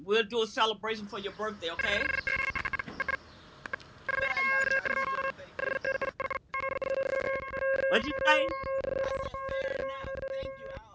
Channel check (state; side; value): identical; both; correlation 1.00